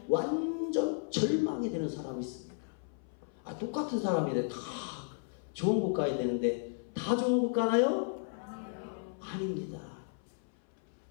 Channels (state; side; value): silent; right; 55 dB below the other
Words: 완전 절망이 되는 사람이 있습니다. 똑같은 사람인데 다 좋은 곳 가야 되는데 다 좋은 곳 가나요? 아닙니다.